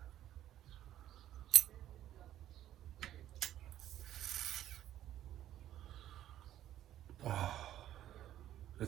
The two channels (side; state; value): left; quieter; 12.3 dB